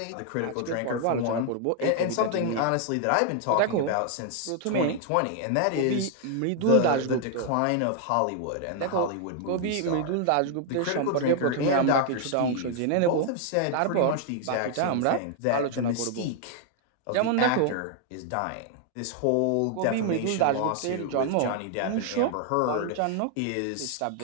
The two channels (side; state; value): both; different; correlation 0.00